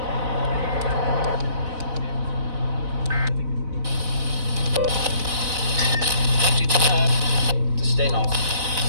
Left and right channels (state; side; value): late; left; 4.0 ms